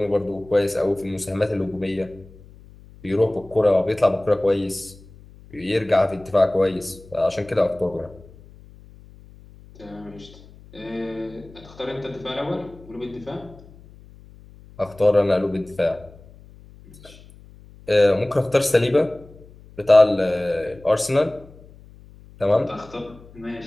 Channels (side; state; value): left; noise; hum, 22 dB below the sound